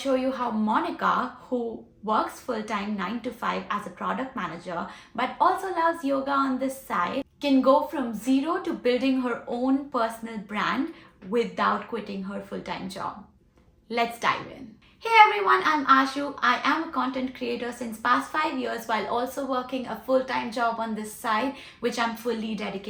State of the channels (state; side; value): identical; both; correlation 1.00